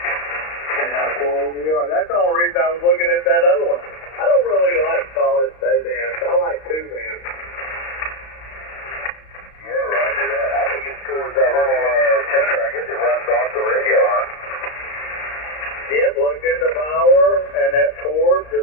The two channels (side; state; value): right; late; 35 ms